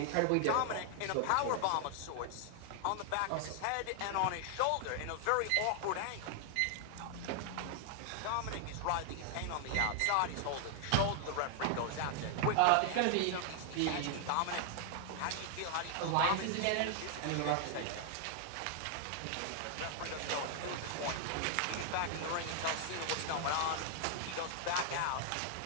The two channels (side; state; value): both; different; correlation 0.00